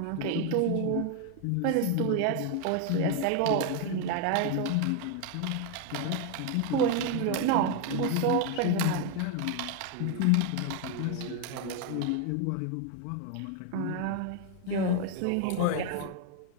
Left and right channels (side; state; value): both; different; correlation 0.01